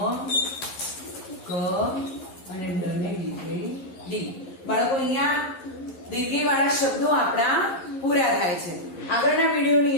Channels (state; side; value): late; right; 11 ms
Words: ક અને ડને દીર્ઘઈ ડી. બાળકો, અહીંયા દીર્ઘઈ વાળા શબ્દો આપણા પૂરા થાય છે. આગળના વિડીયોની